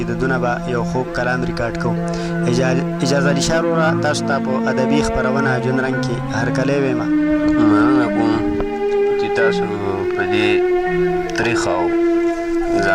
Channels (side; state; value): both; identical; correlation 1.00